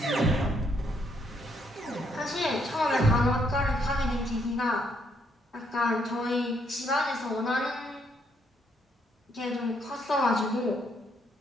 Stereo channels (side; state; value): both; normal; correlation 0.72